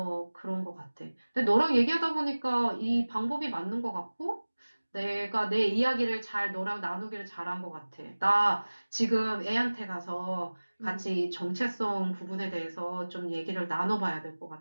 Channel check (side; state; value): both; inverted; correlation -1.00